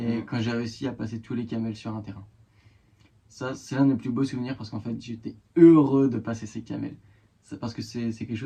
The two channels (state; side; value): identical; both; correlation 1.00